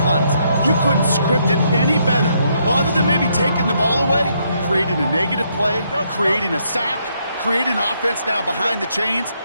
you couldn't script it any better. Well, other than maybe taking the ball away, creating a negative play, creating a sack, creating offense now behind the chains.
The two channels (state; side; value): inverted; both; correlation -0.74